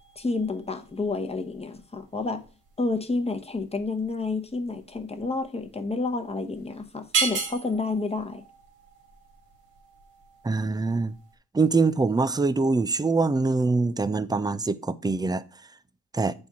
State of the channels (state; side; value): normal; both; correlation 0.70